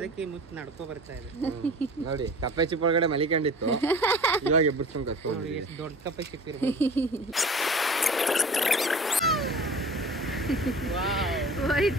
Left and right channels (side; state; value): both; normal; correlation 0.41